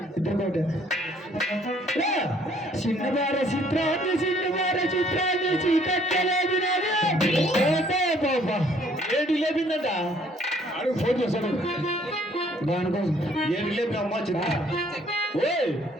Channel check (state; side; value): normal; both; correlation 0.62